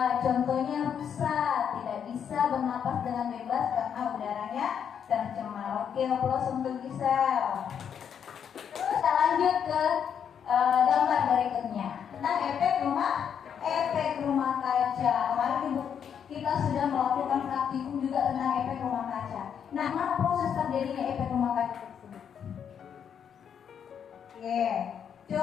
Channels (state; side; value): quieter; right; 8.0 dB